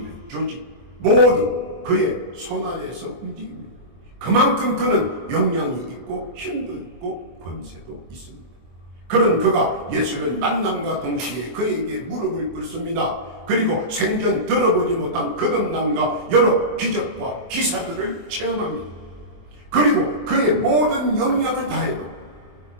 조직, 모두 그의 손 아래에서 움직입니다. 그만큼 그는 역량이 있고 힘도 있고 권세도 있습니다. 그런 그가 예수를 만남과 동시에 그에게 무릎을 꿇습니다. 그리고 생전 들어보지 못한 거듭남과 여러 기적과 기사들을 체험합니다. 그리고 그의 모든 역량을 다해도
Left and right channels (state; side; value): late; left; 24 ms